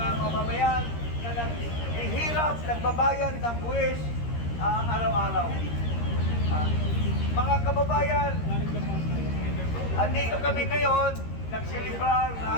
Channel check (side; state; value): right; late; 13 ms